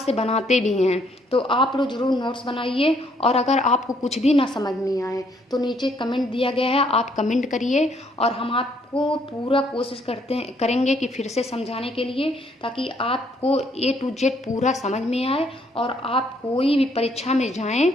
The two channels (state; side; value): normal; both; correlation 0.68